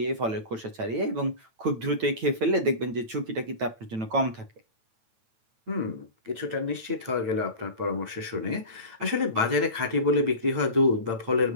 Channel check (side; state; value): left; late; 9.0 ms